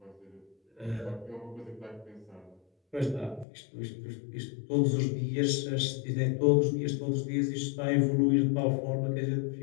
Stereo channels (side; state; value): right; drops out; at 3.5 s